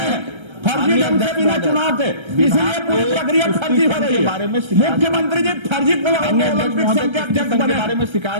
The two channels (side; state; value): left; late; 1.3 ms